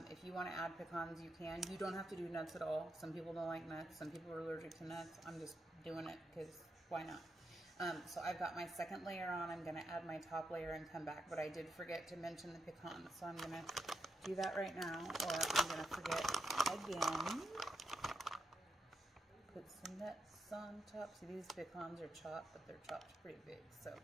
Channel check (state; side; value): normal; both; correlation 0.84